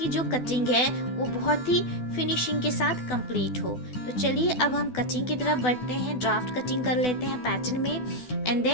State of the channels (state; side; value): late; right; 12 ms